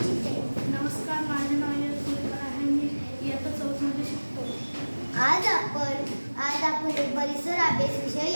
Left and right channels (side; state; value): both; inverted; correlation -1.00